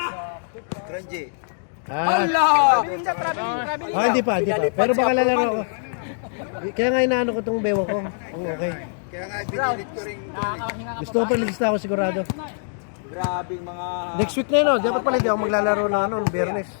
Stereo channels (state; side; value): silent; right; digital silence